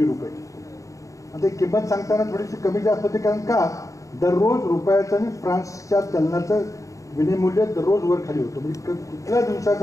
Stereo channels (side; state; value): right; late; 0.16 ms